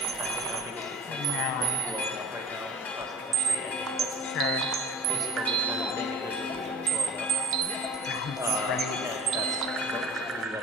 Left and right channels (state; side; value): normal; both; correlation 0.43